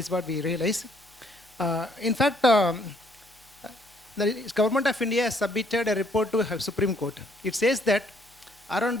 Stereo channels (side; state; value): both; normal; correlation 0.66